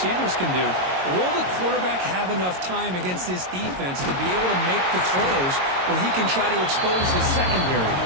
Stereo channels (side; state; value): left; late; 22 ms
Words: can do. Will the quarterback have enough time against this defense to be able to make the throws where he can try to expose the secondary?